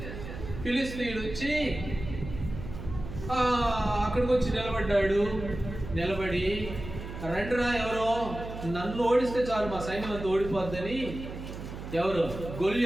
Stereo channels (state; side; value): noise; right; hum, 10 dB below the sound